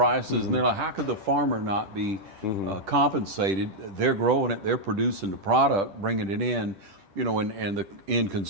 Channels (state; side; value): late; left; 10 ms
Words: and they're like, how could the farmer not be compensated? They're growing it, they're producing the product, bringing it in, and the end